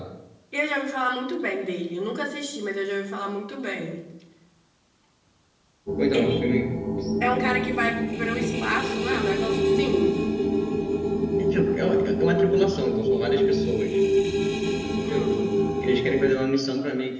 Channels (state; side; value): identical; both; correlation 1.00